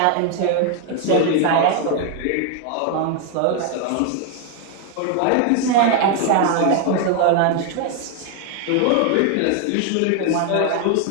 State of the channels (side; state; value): both; different; correlation 0.00